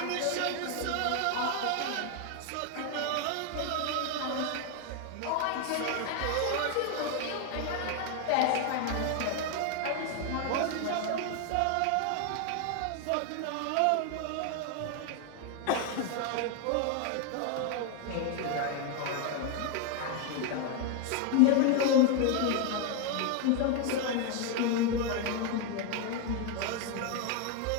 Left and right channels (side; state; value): both; different; correlation 0.01